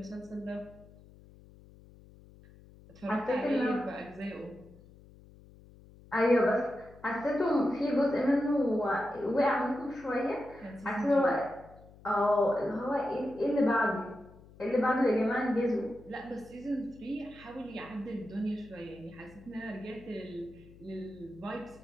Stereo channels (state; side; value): noise; left; hum, 22 dB below the sound